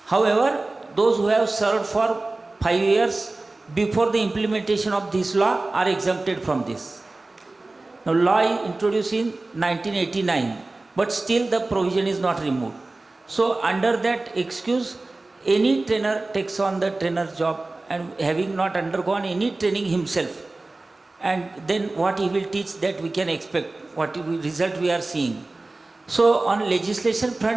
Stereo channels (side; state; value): left; quieter; 3.1 dB